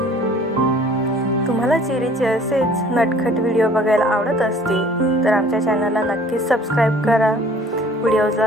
तुम्हाला चेरीचे असेच नटखट व्हिडिओ बघायला आवडत असतील तर आमच्या चॅनलला नक्कीच सबस्क्राईब करा,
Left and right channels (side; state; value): both; normal; correlation 0.52